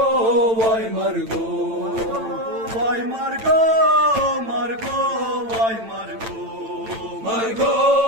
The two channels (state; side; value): late; left; 8.9 ms